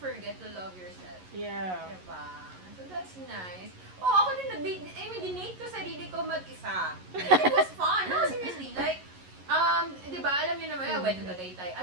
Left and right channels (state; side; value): late; left; 11 ms